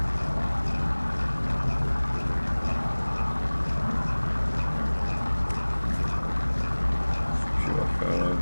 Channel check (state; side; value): inverted; both; correlation -1.00